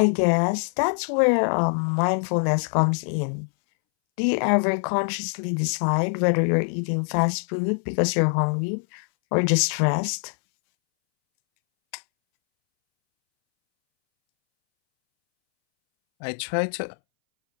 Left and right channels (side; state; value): right; silent; 63 dB below the other